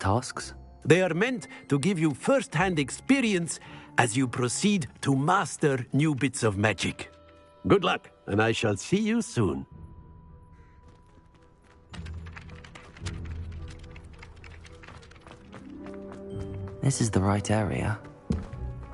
They are meant to give you first-hand experience as you proceed to master new bits of magic. Good luck, and I shall see you soon. This is the right area.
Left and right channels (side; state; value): both; identical; correlation 1.00